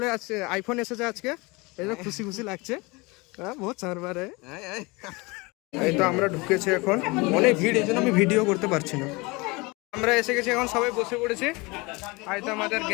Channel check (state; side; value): quieter; right; 25.6 dB